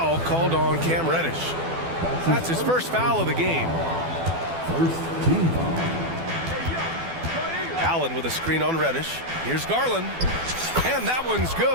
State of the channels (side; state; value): left; late; 12 ms